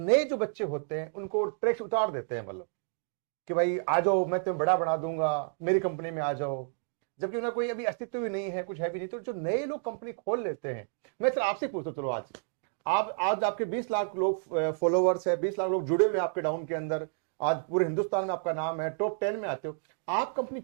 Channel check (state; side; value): silent; left; digital silence